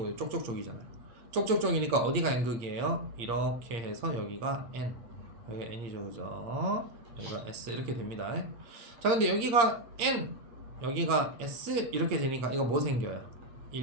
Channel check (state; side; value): late; left; 8.7 ms